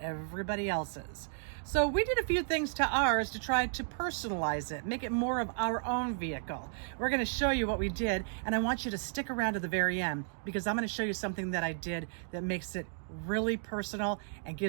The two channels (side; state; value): left; silent; digital silence